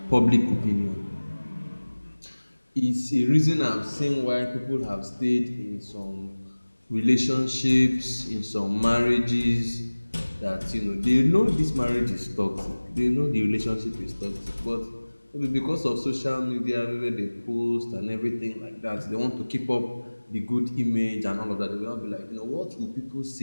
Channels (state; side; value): inverted; both; correlation -1.00